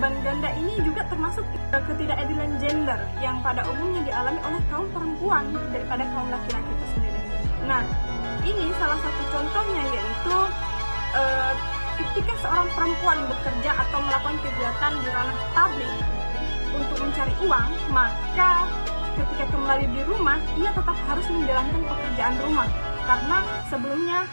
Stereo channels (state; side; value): inverted; both; correlation -1.00